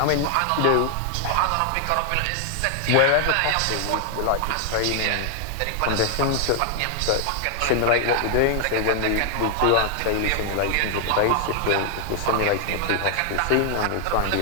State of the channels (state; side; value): different; both; correlation 0.00